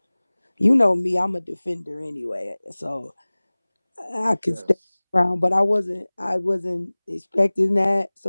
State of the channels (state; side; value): inverted; both; correlation -1.00